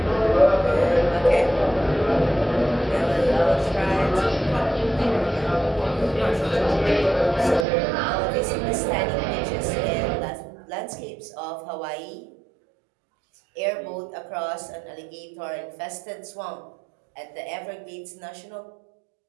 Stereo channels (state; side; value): drops out; left; at 7.7 s